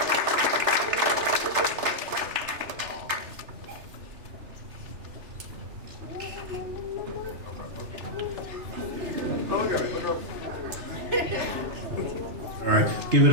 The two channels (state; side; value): late; left; 3.4 ms